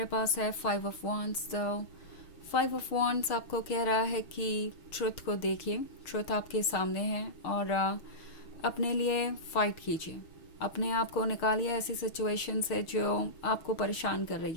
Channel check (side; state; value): right; late; 6.6 ms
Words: पास है 5 ऑफ वॉन्ड्स। तो 5 ऑफ वॉन्ड्स आपको कह रहा है कि ट्रुथ को देखिए, ट्रुथ आपके सामने है और अपने लिए फ़ाइट कीजिए, अपने आप को निकालिए ऐसी सिचुएशन से जो आपको परेशान कर रही